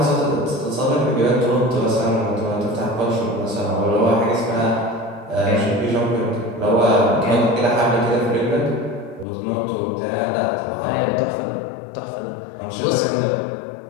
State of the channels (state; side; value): drops out; right; at 9.2 s